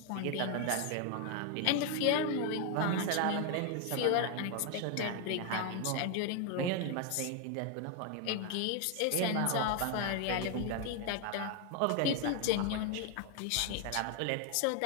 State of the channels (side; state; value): both; different; correlation 0.01